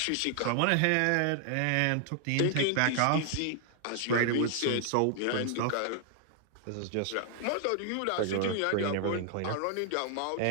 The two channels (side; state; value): both; different; correlation 0.00